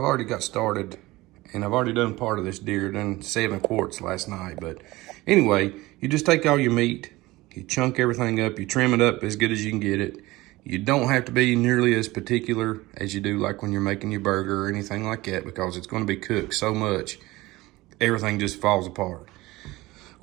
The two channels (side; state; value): left; quieter; 19.7 dB